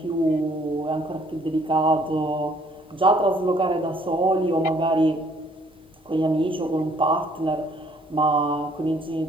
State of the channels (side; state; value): both; normal; correlation 0.62